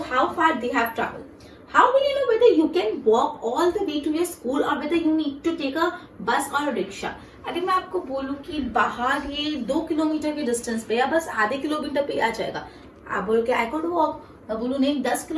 how far they have traveled? How will you know whether you can walk all the way to your school or whether you need to take a bus or a rickshaw? अगर मैं आपको बोलूं कि बाहर ये 2 kilometre के distance पे या बस आधे किलोमीटर पे आ जाएगा, आप बोलोगे आई कुड वॉक, मैं बोलूं नहीं 10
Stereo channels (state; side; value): identical; both; correlation 1.00